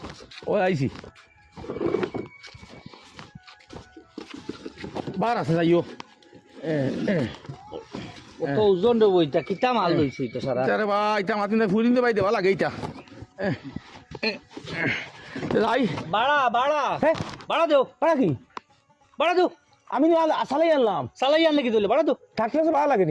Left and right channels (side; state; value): both; identical; correlation 1.00